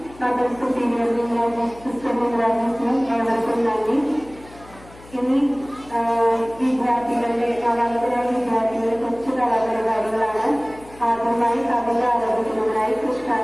മദർ സുപ്പീരിയർ സിസ്റ്റർ വിംഗ്ലാജിനും ഏവർക്കും നന്ദി. ഇനി വിദ്യാർത്ഥികളുടെ നവാഗതരായ വിദ്യാർത്ഥികളുടെ കൊച്ചു കലാപരിപാടികളാണ്. ആദ്യമായി കവിത ആരംഭിക്കുന്നതിനായി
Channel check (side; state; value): left; noise; hum, 22 dB below the sound